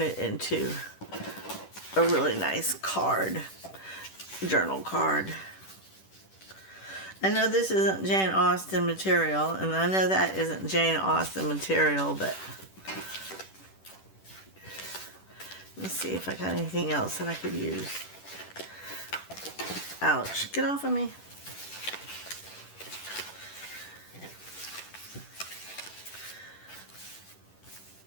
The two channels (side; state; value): right; late; 10 ms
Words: it into a really nice card, journal card. I know this isn't Jane Austen material, and I know that isn't Jane Austen material, but let's see if I got anything else that I could use. Ouch, get off of me.